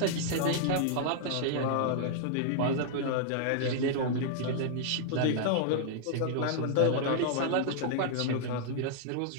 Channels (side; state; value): both; different; correlation -0.01